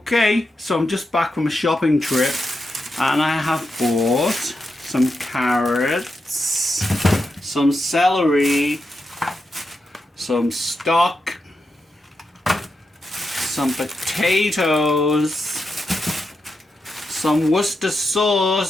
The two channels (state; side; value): normal; both; correlation 0.86